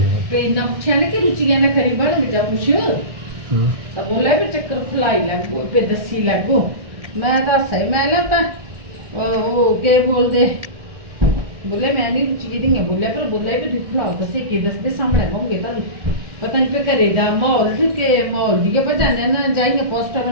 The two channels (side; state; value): left; late; 1.6 ms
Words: पे ना पूछा ना कि रुचिया ने खरी बन जा पूछ तो बोला भी चक्कर खुलाई लगो पे दसी लगो मैं तो सही मैं लगता वो के बोलते बोले मैं नहीं रुचि दी बोले पर बोले भी दिखलाओ तो से दस दे सामने होंगे तो पता नहीं पे करेगा माहौल के माहौल दिए बजाने ना जाएंगे पोस्टर